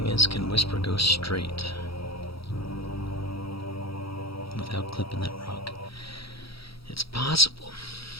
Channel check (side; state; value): right; late; 0.76 ms